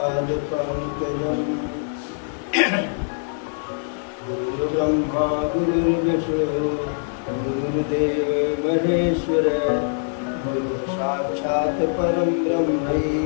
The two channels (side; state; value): right; silent; digital silence